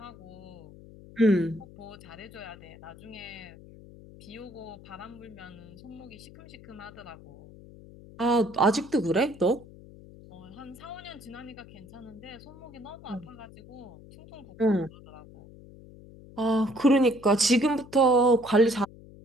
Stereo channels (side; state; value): left; noise; hum, 19 dB below the sound